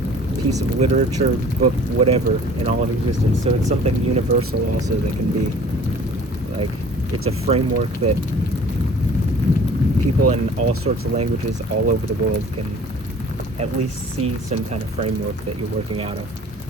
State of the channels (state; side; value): normal; both; correlation 0.49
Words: piece of literature, book, whatever, in all of existence. So it's something universal also that can be, like, it's a framework that people in all sorts of languages all over the world can at least see some kind of framework that you're working out of.